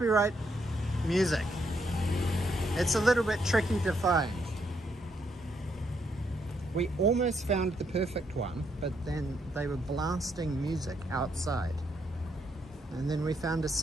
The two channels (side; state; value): both; normal; correlation 0.75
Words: music. It's a little bit tricky to find. We almost found the perfect one, but then they were blasting music outside. And then we found a